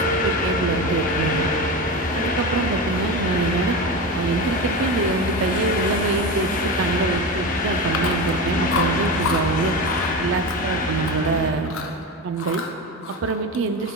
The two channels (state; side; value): normal; both; correlation 0.23